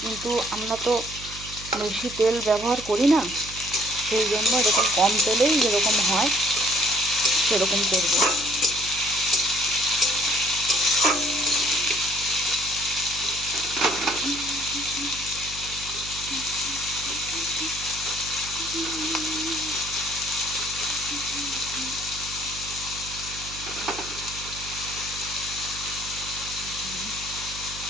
কিন্তু আমরা তো বেশি তেল ব্যবহার করি না, সেই জন্য এরকম কম তেলেই যেরকম হয় সেরকম করব।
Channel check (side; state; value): right; noise; hum, 14 dB below the sound